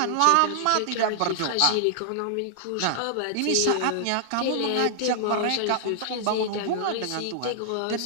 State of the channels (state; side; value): different; both; correlation 0.00